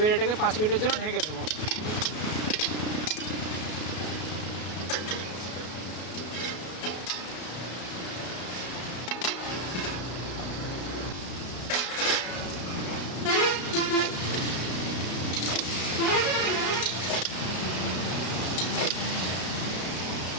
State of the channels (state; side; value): late; right; 33 ms